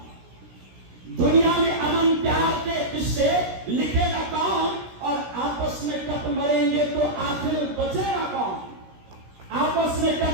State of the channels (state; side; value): late; left; 16 ms